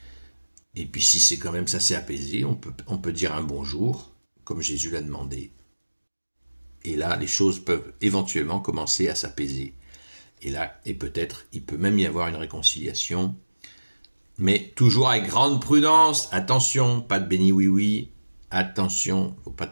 Et puis si c'est quand même ça s'est apaisé, on peut dire un bonjour, comme Jésus l'a demandé. Et là, les choses peuvent éventuellement commencer à s'apaiser. Et peut-être, il peut même y avoir une réconciliation. Mais toujours avec grande prudence. Attention, pas de béni oui. Attention, faut pas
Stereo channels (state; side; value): inverted; both; correlation -1.00